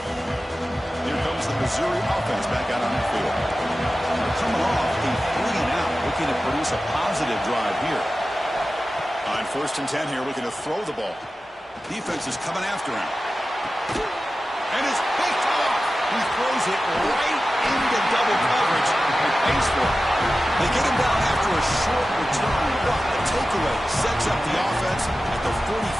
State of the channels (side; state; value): both; normal; correlation 0.94